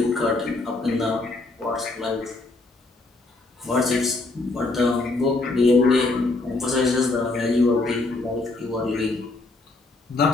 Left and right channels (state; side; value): quieter; right; 3.2 dB